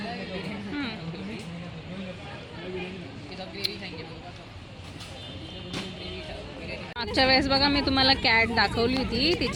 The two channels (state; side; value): identical; both; correlation 1.00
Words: मागच्या वेळेस बघा मी तुम्हाला कॅट दाखवली होती,